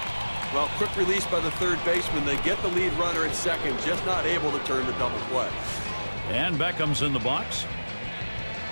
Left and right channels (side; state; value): both; inverted; correlation -1.00